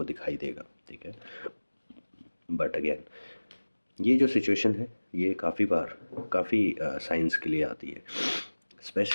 दिखाई देगा। ठीक है, बट अगेन ये जो सिचुएशन है ये काफ़ी बार काफ़ी साइंस के लिए आती है,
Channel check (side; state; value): both; inverted; correlation -1.00